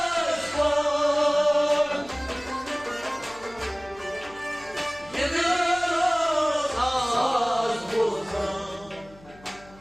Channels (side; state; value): left; noise; hum, 24 dB below the sound